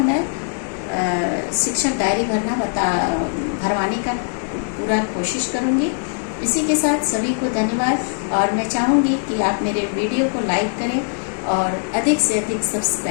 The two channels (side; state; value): right; silent; 65 dB below the other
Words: शिक्षक डायरी भरवाने का पूरा कोशिश करूंगी। इसी के साथ सभी को धन्यवाद, और मैं चाहूँगी कि आप मेरे वीडियो को लाइक करें और अधिक से अधिक